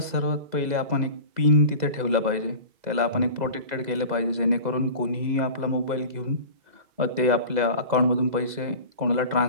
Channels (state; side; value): late; left; 2.0 ms